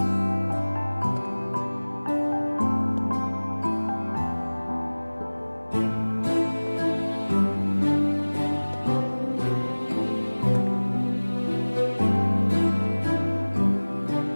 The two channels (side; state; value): both; inverted; correlation -1.00